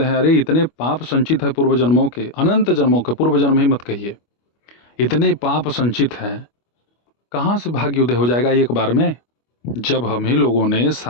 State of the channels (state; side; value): late; right; 25 ms